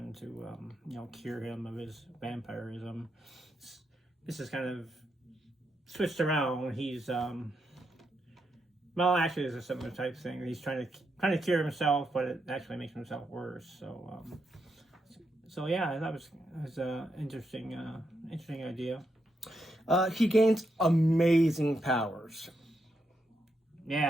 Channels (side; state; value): both; normal; correlation 0.82